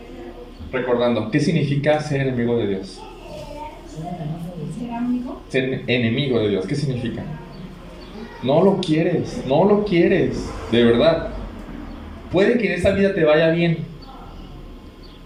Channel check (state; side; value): identical; both; correlation 1.00